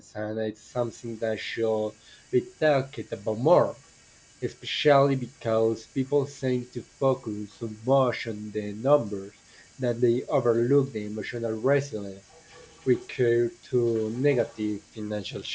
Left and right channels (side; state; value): both; identical; correlation 1.00